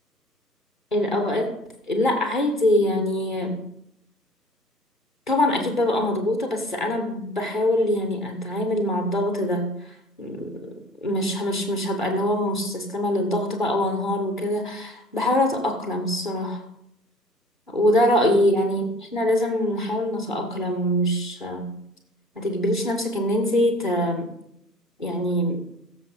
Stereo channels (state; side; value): normal; both; correlation 0.48